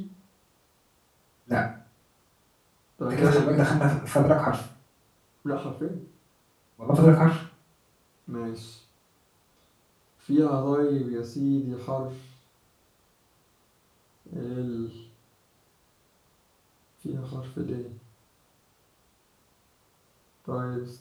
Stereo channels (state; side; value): identical; both; correlation 1.00